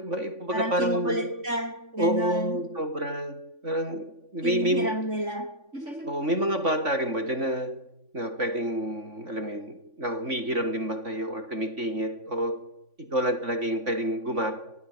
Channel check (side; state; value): left; late; 3.5 ms